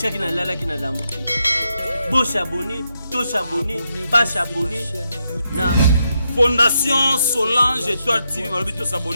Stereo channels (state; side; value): inverted; both; correlation -0.82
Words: na lala ki na lamuki. Bo s'abonner, to s'abonner, ba s'abonner na Fondation Solange Étoile TV. Malobi to